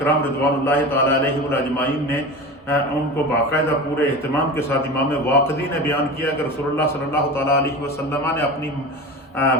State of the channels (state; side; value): normal; both; correlation 0.30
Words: رضوان اللہ تعالیٰ علیہ اجمعین نے ان کو باقاعدہ پورے اہتمام کے ساتھ امام واقدی نے بیان کیا کہ رسول اللہ صلی اللہ تعالیٰ علیہ وسلم نے اپنی